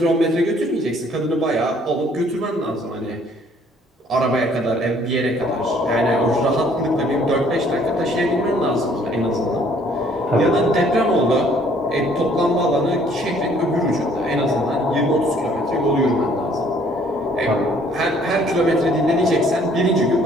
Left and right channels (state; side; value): normal; both; correlation 0.61